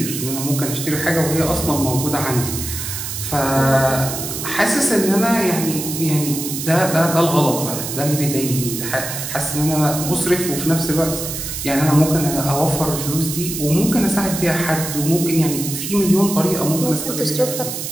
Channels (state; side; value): noise; right; hiss, 6 dB below the sound